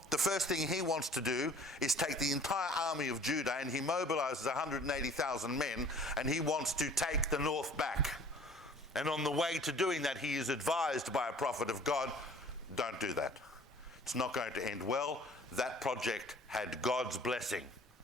the first thing he wants to do is take the entire army of Judah, and he mobilizes 180,000 men, and he wants to take the north back. And on the way to doing that, he is advised by a prophet of God, don't do that. It's not going to end well. That project had God's blessing.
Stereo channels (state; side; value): normal; both; correlation 0.50